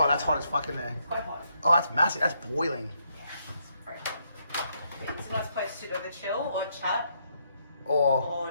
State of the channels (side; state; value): both; inverted; correlation -0.75